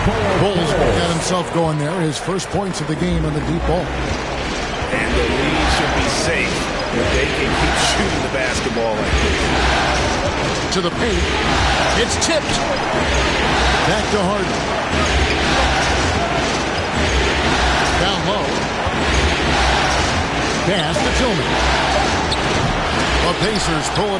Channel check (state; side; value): identical; both; correlation 1.00